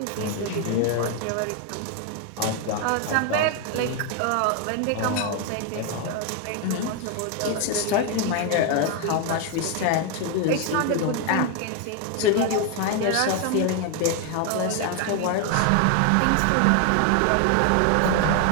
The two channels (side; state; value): both; different; correlation 0.01